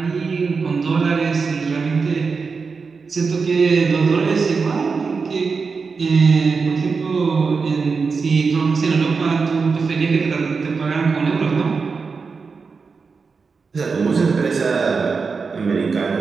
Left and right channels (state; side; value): quieter; left; 4.9 dB